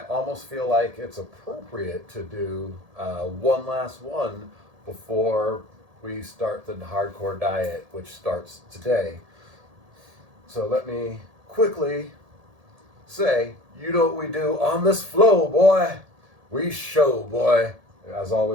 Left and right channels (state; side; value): late; left; 1.7 ms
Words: almost feel like it's appropriate to do one last one before we start the hardcore diet, which starts today. So let me quickly say, you know what we do on this flow, boy. We show, boy. As